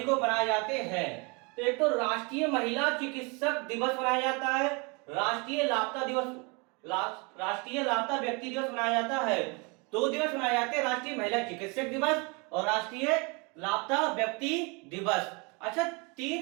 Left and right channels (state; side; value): quieter; left; 30.5 dB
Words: को मनाए जाते हैं? तो एक तो राष्ट्रीय महिला चिकित्सक दिवस मनाया जाता है, राष्ट्रीय लापता दिवस, राष्ट्रीय लापता व्यक्ति दिवस मनाया जाता है। 2 दिवस मनाए जाते हैं, राष्ट्रीय महिला चिकित्सक दिवस और राष्ट्रीय लापता व्यक्ति दिवस। अच्छा,